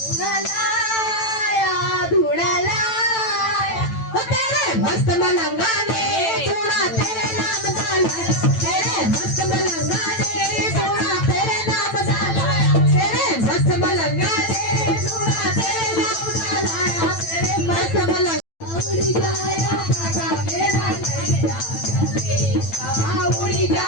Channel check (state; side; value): late; right; 9.0 ms